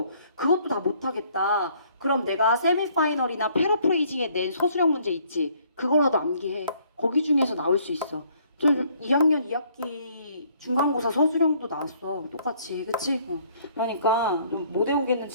그것도 다 못하겠다. 그럼 내가 세미파이널이나 패러프레이징에 낸 서술형 문제 있지? 그거라도 암기해. 거기 중에서 나올 수 있어. 저 2학년 2학기 중간고사 서술형도 나왔어. 똑같이. 그치? 그러니까 좀 못 외우겠는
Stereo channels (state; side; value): inverted; both; correlation -0.62